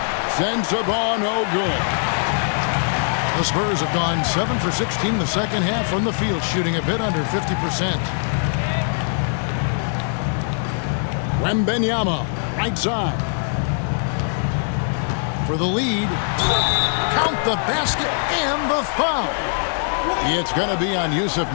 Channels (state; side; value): silent; right; digital silence